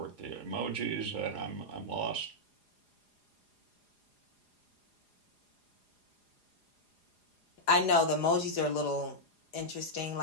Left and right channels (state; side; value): late; right; 4.9 ms